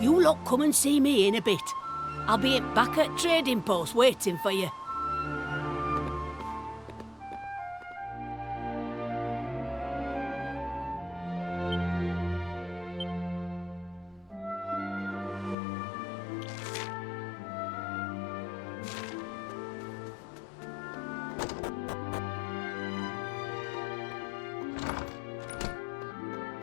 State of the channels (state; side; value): drops out; right; at 15.6 s